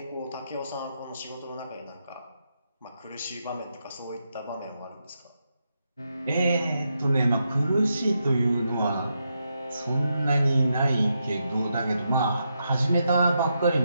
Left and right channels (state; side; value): inverted; both; correlation -0.83